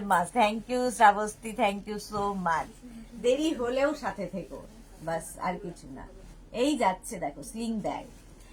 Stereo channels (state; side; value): identical; both; correlation 1.00